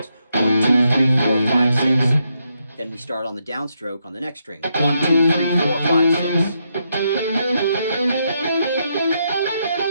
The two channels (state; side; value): inverted; both; correlation -0.80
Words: 1, 2, 3, 4, 5, 6. Then we start on the downstroke on the next string. 1, 2, 3, 4, 5, 6.